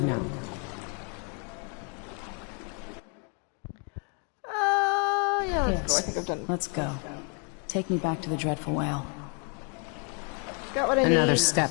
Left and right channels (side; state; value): right; quieter; 38.9 dB